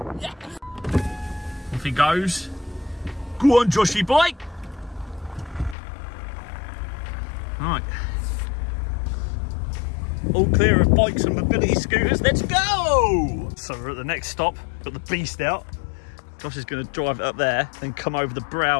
Yeah. Off he goes. Go on, Joshy bike. Right. All clear of bikes and mobility scooters. Let's go! So we're at the next stop. Got the beast out. Josh is going to drive it up there, then come over the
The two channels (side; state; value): right; drops out; at 5.8 s